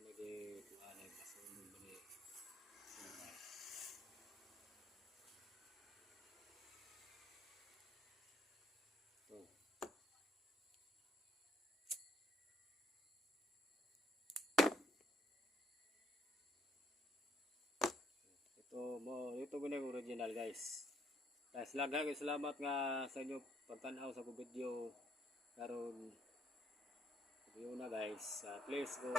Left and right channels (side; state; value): both; normal; correlation 0.66